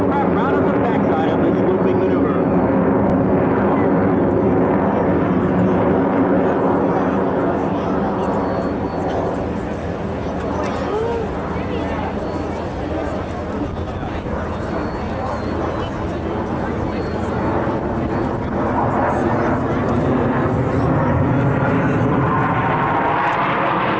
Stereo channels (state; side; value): identical; both; correlation 1.00